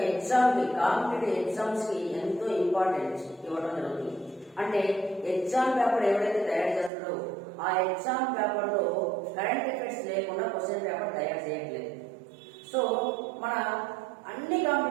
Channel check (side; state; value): left; drops out; at 6.9 s